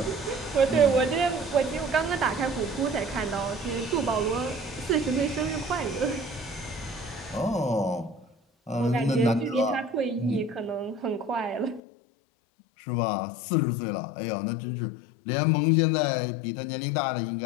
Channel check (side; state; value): right; drops out; at 11.8 s